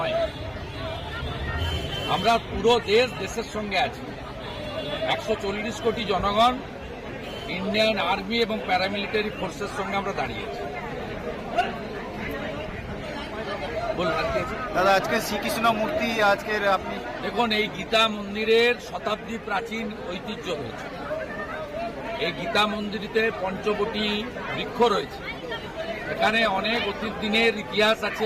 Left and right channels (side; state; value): both; identical; correlation 1.00